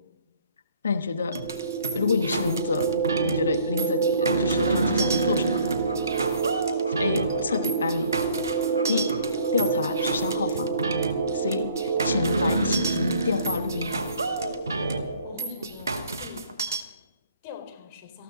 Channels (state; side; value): inverted; both; correlation -0.58